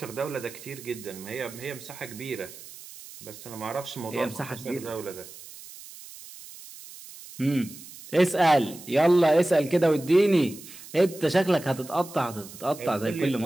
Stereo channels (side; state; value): right; noise; hiss, 16 dB below the sound